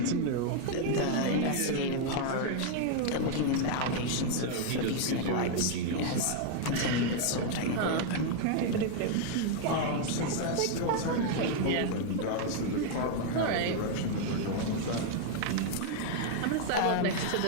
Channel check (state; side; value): different; both; correlation 0.00